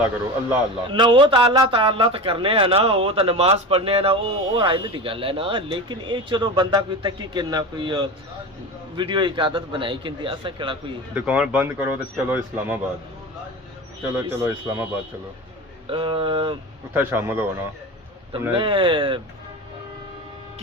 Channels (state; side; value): normal; both; correlation 0.28